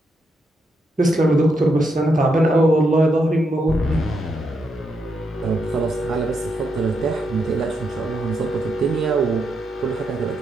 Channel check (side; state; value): both; normal; correlation 0.81